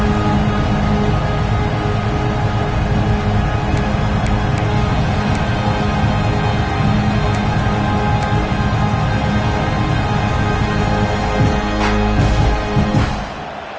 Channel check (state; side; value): identical; both; correlation 1.00